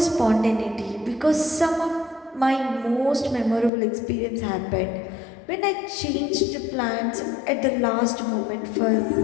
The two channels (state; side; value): drops out; right; at 3.7 s